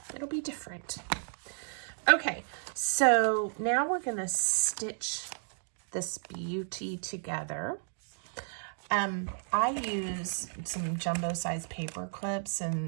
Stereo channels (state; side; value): silent; left; digital silence